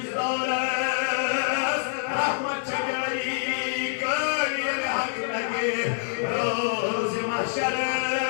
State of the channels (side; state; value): right; silent; digital silence